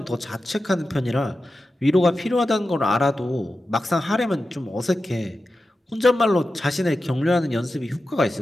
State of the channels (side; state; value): both; normal; correlation 0.92